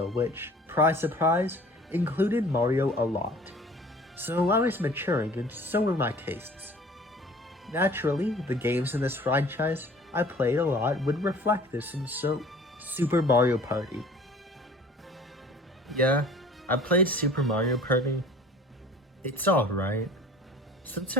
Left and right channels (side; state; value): both; normal; correlation 0.47